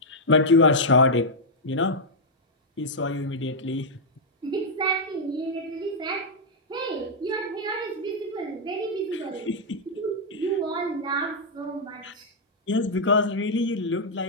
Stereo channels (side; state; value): both; normal; correlation -0.04